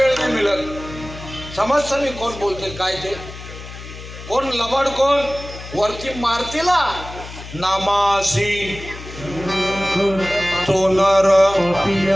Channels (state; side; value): noise; left; hum, 13 dB below the sound